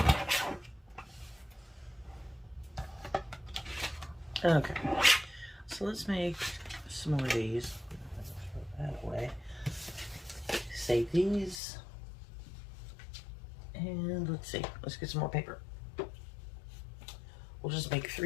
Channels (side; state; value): right; drops out; at 11.6 s